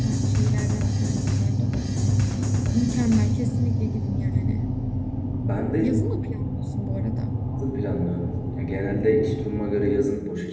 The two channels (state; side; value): identical; both; correlation 1.00